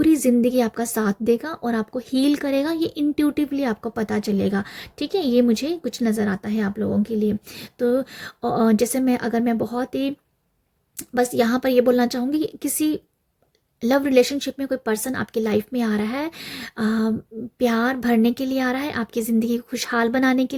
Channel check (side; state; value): both; identical; correlation 1.00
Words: ज़िंदगी आपका साथ देगा और आपको हील करेगा, ये इंट्यूटिवली आपको पता चलेगा। ठीक है, ये मुझे कुछ नज़र आता है आप लोगों के लिए। तो जैसे मैं बहुत ही बस यहाँ पर ये बोलना चाहूँगी कि किसी लव रिलेशनशिप में कोई पर्सन आपकी लाइफ में आ रहा है, प्यार भरने के लिए आ रहा है, आपकी ज़िंदगी को खुशहाल बनाने के